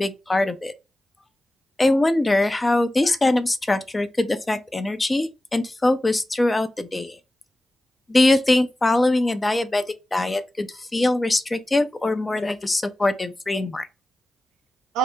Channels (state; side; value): normal; both; correlation 0.95